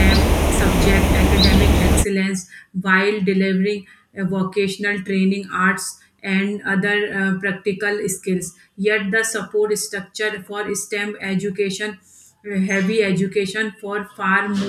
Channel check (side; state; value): both; identical; correlation 1.00